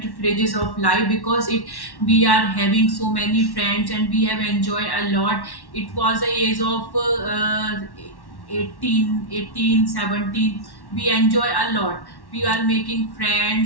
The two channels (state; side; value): late; right; 1.1 ms